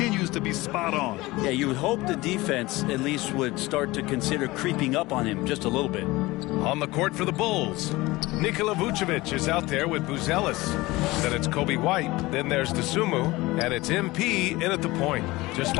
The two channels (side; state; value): right; quieter; 20.4 dB